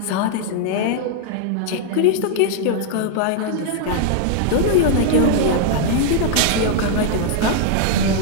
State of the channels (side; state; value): both; different; correlation 0.00